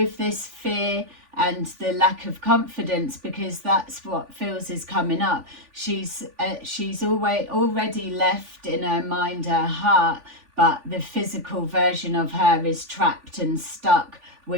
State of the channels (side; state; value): left; late; 3.5 ms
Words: this fear and the lack of confidence, because that's what feels is coming up. She's already left in her mind, her heart, but the physical version of her is trapped and stuck